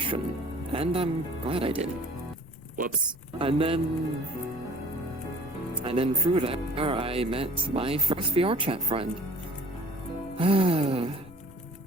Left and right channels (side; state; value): left; noise; rumble, 21 dB below the sound